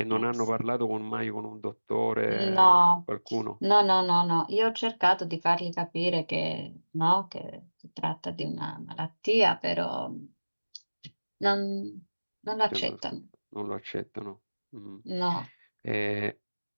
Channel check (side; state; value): both; inverted; correlation -1.00